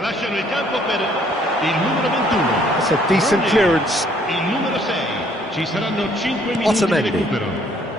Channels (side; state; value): both; normal; correlation 0.63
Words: Lasciano il campo per il numero 21. That's a decent clearance. Il numero 6. Ci saranno 5 minuti Otamendi. di recupero.